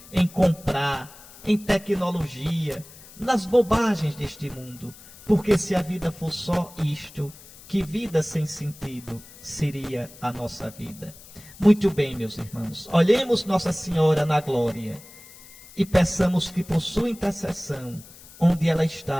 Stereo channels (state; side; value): noise; left; hiss, 20 dB below the sound